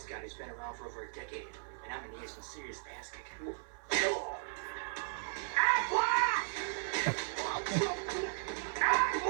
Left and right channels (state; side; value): silent; left; 54 dB below the other